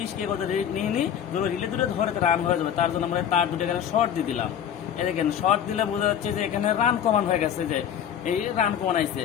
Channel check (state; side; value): quieter; right; 9.1 dB